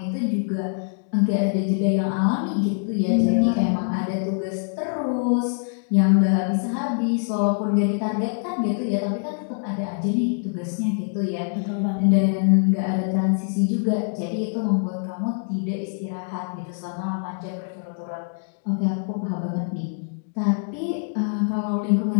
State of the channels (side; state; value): right; silent; 63 dB below the other